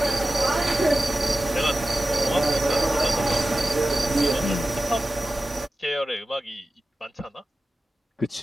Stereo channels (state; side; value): normal; both; correlation 0.94